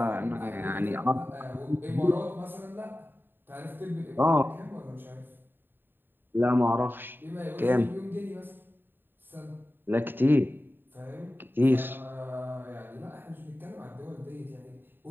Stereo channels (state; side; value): late; left; 0.095 ms